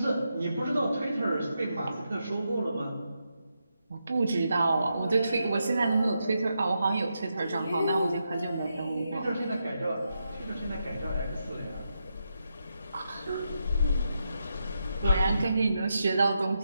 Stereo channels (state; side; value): inverted; both; correlation -0.84